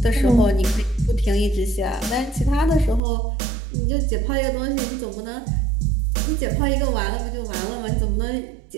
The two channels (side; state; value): left; drops out; at 3.0 s